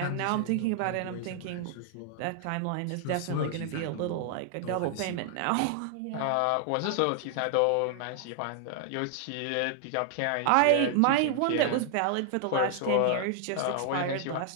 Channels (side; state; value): both; different; correlation 0.00